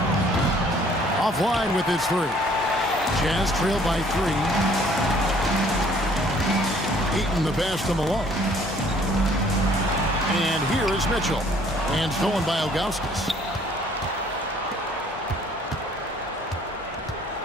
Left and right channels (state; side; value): normal; both; correlation 0.59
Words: Offline with his 3. Jazz trail by 3. Eaton the pass to Malone. And here is Mitchell. And stolen by Ilgauskas.